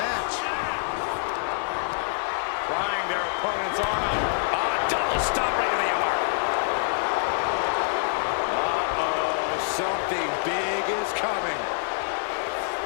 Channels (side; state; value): right; silent; 55 dB below the other